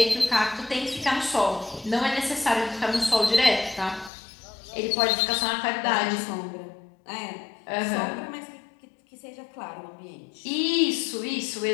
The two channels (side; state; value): right; drops out; at 4.1 s